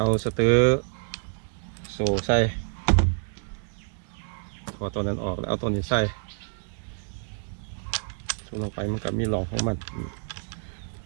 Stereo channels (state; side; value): silent; left; digital silence